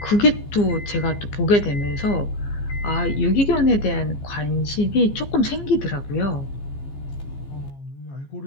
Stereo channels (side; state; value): right; late; 15 ms